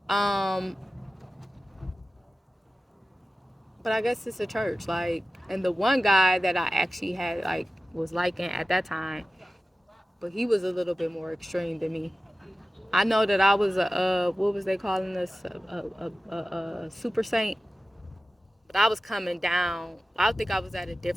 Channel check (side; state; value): both; normal; correlation 0.95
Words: Um, but I guess it's a church. Like, and the one guy that I actually had like was liking at that time, but he was a little bit more extreme than me. I know that I was a what was they calling us a super saint, but I was coming down. I think I was at a